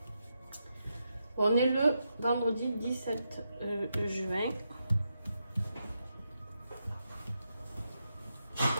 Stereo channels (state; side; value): inverted; both; correlation -0.85